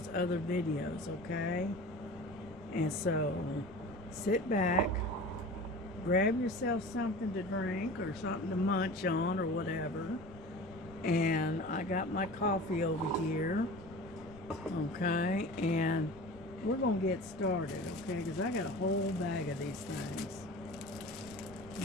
other videos. Okay, and so sit back, grab yourself something to drink or something to munch on or whatever, and I got my coffee over here. Okay, and we're gonna get started, okay, because I got a whole bag of these things.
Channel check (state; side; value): noise; left; rumble, 19 dB below the sound